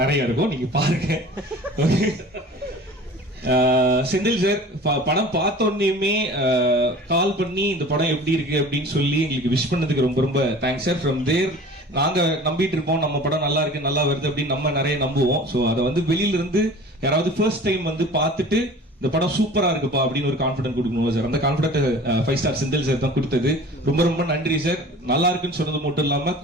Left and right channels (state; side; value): normal; both; correlation 0.43